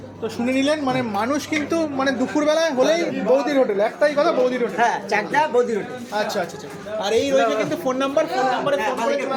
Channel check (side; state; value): both; identical; correlation 1.00